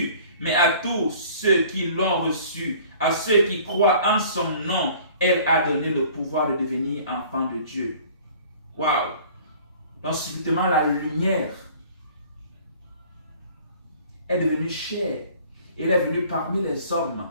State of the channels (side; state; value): both; inverted; correlation -0.50